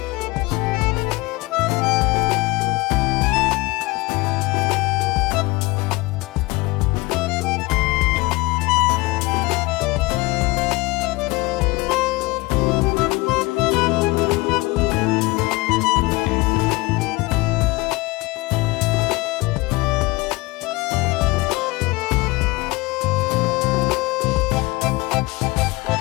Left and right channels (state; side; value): quieter; right; 22.9 dB